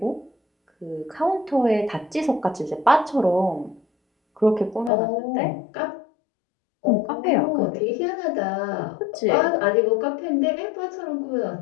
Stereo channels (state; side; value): drops out; right; at 4.9 s